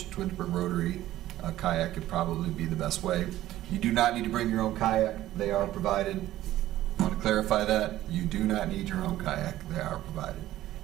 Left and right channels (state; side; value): quieter; left; 14.4 dB